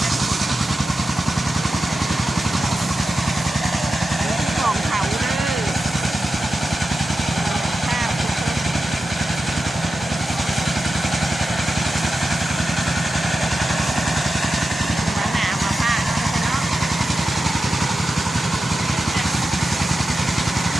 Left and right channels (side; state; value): both; normal; correlation 0.91